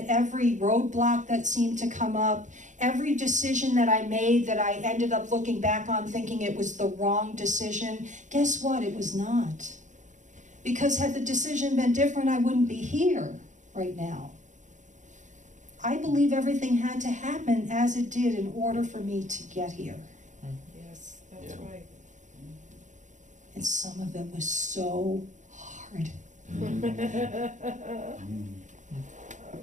every roadblock that seemed to come up, every decision that I made that I ended up looking back on thinking it was the wrong decision, guess what? It was not. Because had the decision been different, I wouldn't be here right now. I believe everything had to happen as it did in order for me to get here. Yes, that's Yeah. right. And some of it was so hard.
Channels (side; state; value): left; late; 0.36 ms